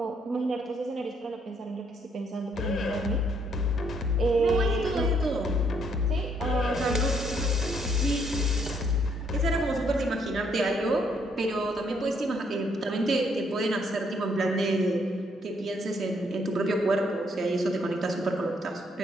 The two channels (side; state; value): both; normal; correlation 0.70